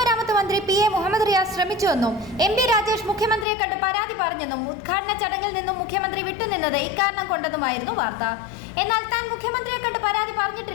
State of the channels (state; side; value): drops out; right; at 3.5 s